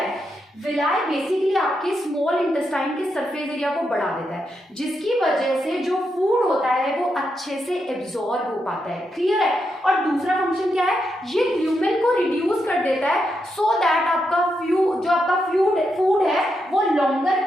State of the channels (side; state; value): both; normal; correlation 0.83